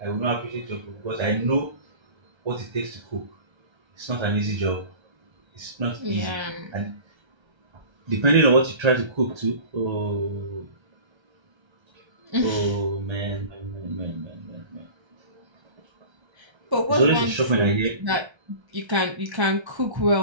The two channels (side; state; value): left; late; 1.3 ms